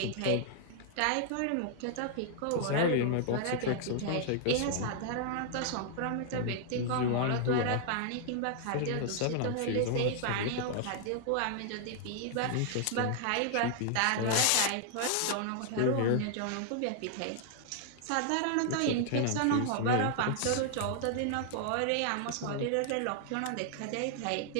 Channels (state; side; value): different; both; correlation -0.01